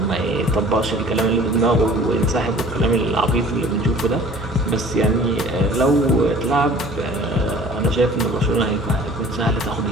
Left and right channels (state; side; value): normal; both; correlation 0.48